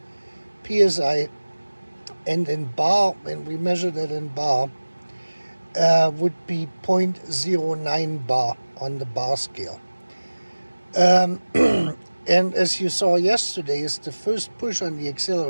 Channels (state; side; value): inverted; both; correlation -1.00